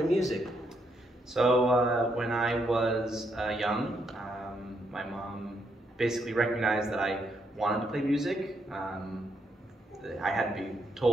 music? So when I was young, my mom basically recognized that I wanted to play music. I had to be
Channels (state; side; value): normal; both; correlation 0.77